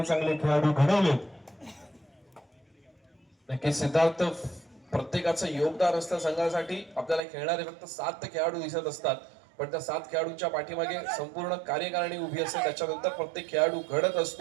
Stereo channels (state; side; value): drops out; left; at 7.2 s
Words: खेळाडू घडवलेत. नक्कीच सिद्धार्थ, प्रत्येकाचं योगदान असतं संघासाठी. आपल्याला खेळणारे फक्त 7 खेळाडू दिसत असतात, पण त्या 7 खेळाडूंच्या पाठीमागे संपूर्ण कार्यकारिणी उभी असते. त्याच्यानंतर प्रत्येक खेळाडू घडत